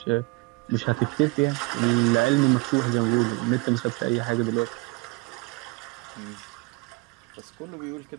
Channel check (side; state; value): left; quieter; 25.4 dB